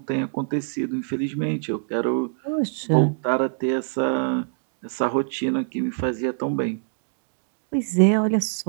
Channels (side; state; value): left; silent; digital silence